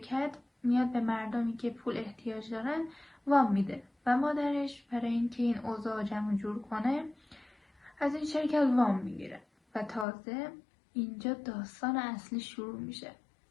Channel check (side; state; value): right; drops out; at 10.1 s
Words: میاد به مردمی که پول احتیاج دارن وام میده و مادرش برای اینکه این اوضاع جمع جور کنه از این شرکت وام میگیره و تازه اینجا داستان اصلی شروع میشه.